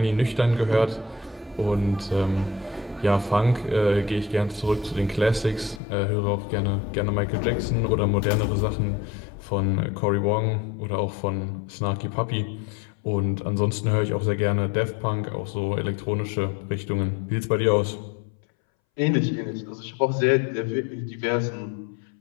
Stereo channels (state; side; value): drops out; right; at 5.8 s